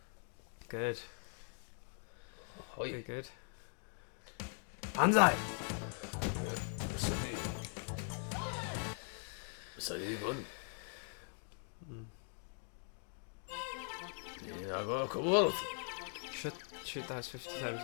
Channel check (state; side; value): silent; right; 50 dB below the other